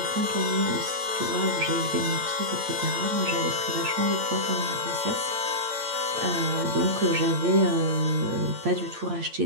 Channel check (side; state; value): left; late; 8.7 ms